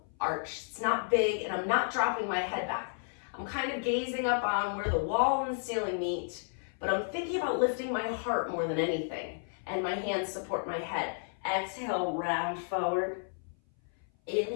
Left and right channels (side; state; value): right; silent; 56 dB below the other